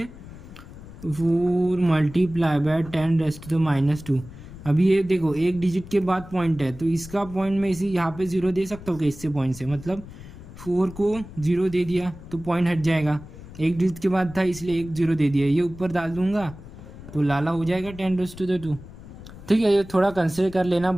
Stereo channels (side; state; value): left; noise; rumble, 16 dB below the sound